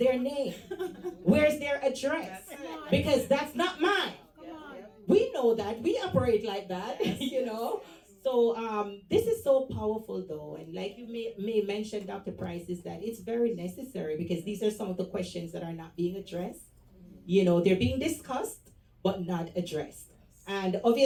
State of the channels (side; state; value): both; identical; correlation 1.00